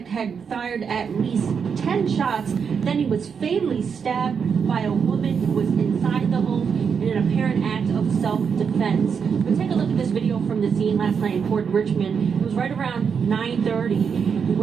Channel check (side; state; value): left; quieter; 6.5 dB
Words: had fired at least 10 shots. Then he was fatally stabbed by a woman who was inside the home in an apparent act of self-defense. But take a look at this video from the scene last night in Port Richmond. It was right around 9:30